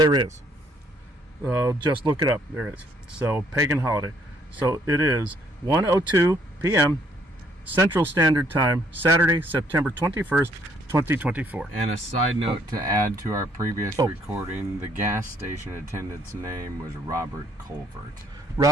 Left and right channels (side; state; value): both; normal; correlation 0.66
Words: is. Just look it up. There is. So, pagan holiday. So it is 1:02 p.m. Central Standard Time, Saturday, September 21st, 2024. And a side note to add to our previous recording, the gas station attendant's name was Robert Colvert.